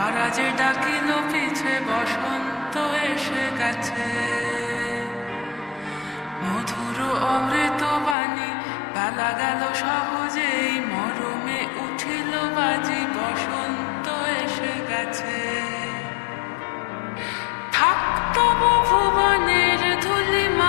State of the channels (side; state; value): right; drops out; at 8.2 s